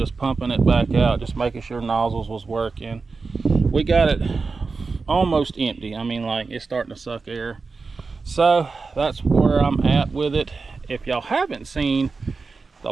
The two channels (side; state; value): left; quieter; 4.4 dB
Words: pumping it back out, just making sure nozzles was working. We got it almost empty. I mean, like, it's starting to suck air. So that's where I'm at with it. If y'all haven't seen the